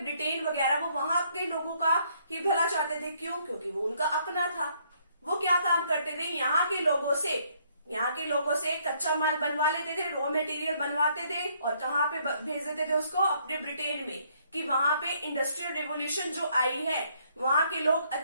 ब्रिटेन वगैरह, वो वहां के लोगों का ही भला चाहते थे। क्यों? क्योंकि वो उनका अपना था। वो क्या काम करते थे, यहाँ के लोगों से कच्चा माल बनवा लेते थे, रॉ मटेरियल बनवाते थे और कहाँ पे भेज देते थे उसको? अपने ब्रिटेन में, कि वहां पे इंडस्ट्रियल रिवोल्यूशन जो आई है, वहां के लोग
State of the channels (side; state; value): both; inverted; correlation -0.68